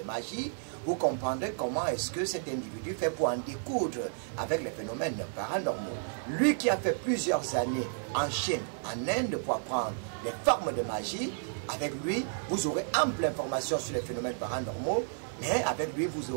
magie, vous comprendrez comment est-ce que cet individu fait pour en découdre avec les phénomènes paranormaux. Lui qui a fait plusieurs années en Chine, en Inde pour apprendre les formes de magie, avec lui, vous aurez ample information sur les phénomènes paranormaux, mais avec lui, vous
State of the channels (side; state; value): left; silent; digital silence